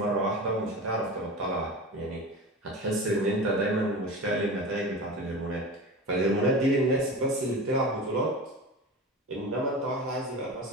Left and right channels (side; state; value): both; normal; correlation 0.31